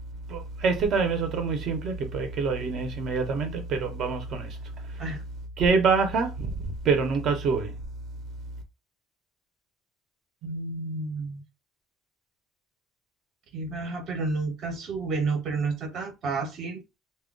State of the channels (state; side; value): quieter; left; 4.3 dB